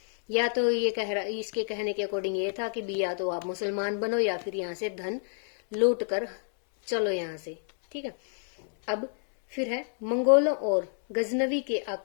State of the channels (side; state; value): right; silent; 59 dB below the other